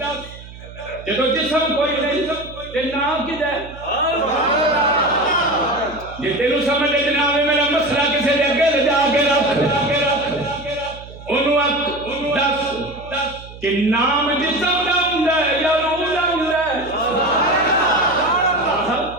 جدو جسم کوئی نہیں تے نام کدا ہے جے تینوں سمجھ لے جناب میرا مسئلہ کسے دے اگے لے جا کے رکھ انہوں دس کہ نام جسم دا ہوندا ہے یا روح دا ہوندا ہے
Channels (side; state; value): right; noise; hum, 17 dB below the sound